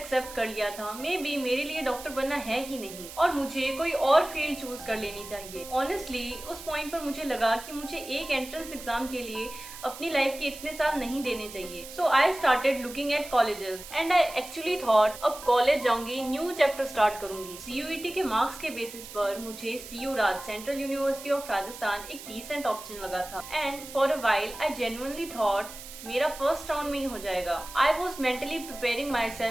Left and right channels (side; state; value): right; noise; hiss, 13 dB below the sound